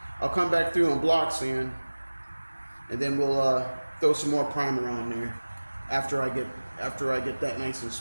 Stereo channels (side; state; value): both; inverted; correlation -1.00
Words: I'll come back through and block sand, and then we'll throw some more primer on there after I get that nice and